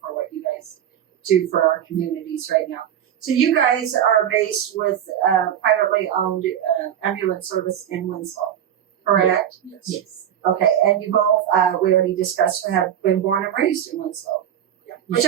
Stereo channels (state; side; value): quieter; left; 10.0 dB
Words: what you guys do for our communities right now. So you guys are based with privately owned ambulance service in Winslow, correct? Yes. Okay, and you both, we already discussed, have been born and raised in Winslow. Yeah. Which